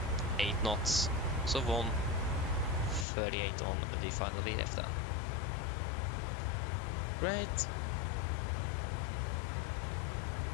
knots. So 138 on the final VDF then. Great.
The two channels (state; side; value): drops out; right; at 3.1 s